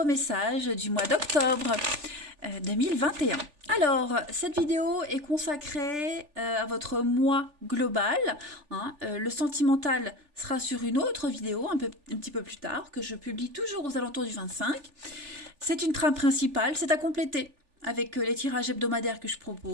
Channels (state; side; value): late; left; 3.4 ms